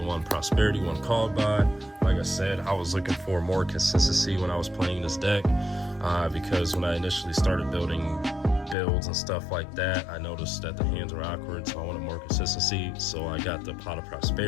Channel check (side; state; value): right; drops out; at 8.8 s